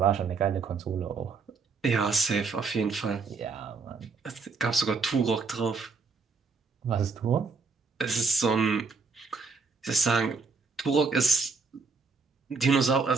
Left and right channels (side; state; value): left; quieter; 4.5 dB